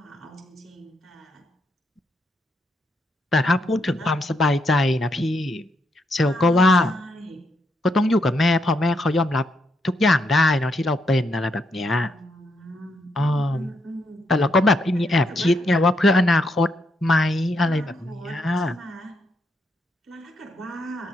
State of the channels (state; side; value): normal; both; correlation 0.78